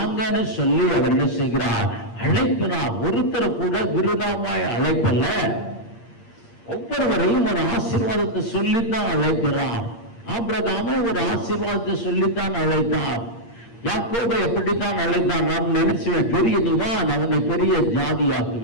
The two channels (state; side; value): late; right; 8.7 ms